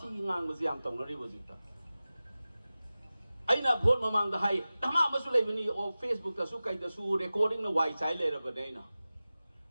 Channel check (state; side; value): inverted; both; correlation -0.96